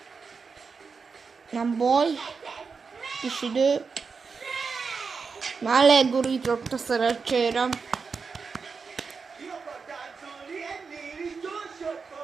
Nem baj. Kis idő. Már legurított a szerencsére. Ki akar táncolni ennél is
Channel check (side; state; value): left; quieter; 5.1 dB